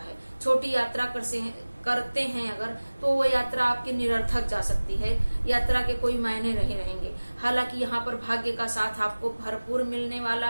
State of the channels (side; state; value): both; inverted; correlation -1.00